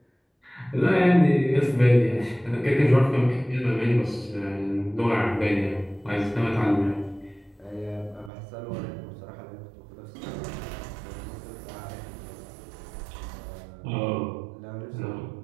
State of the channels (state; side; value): drops out; left; at 8.3 s